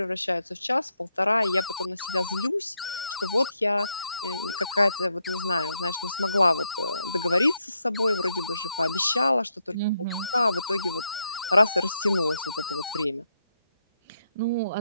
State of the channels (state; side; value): inverted; both; correlation -0.80